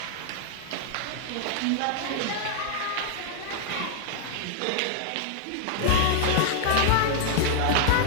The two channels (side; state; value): both; different; correlation 0.00